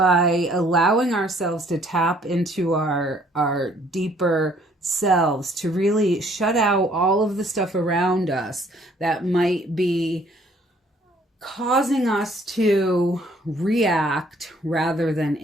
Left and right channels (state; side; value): normal; both; correlation 0.61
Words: allowing ourselves to tap into our deeper selves, to really shut out all of the stuff around us that might be causing us to react rather than